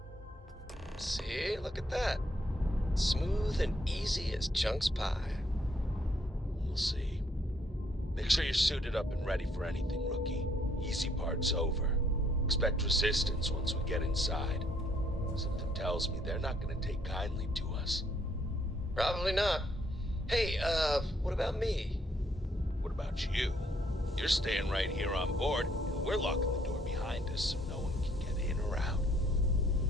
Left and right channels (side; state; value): both; normal; correlation 0.68